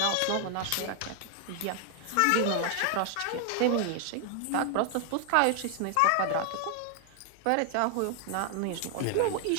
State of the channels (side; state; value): both; different; correlation 0.00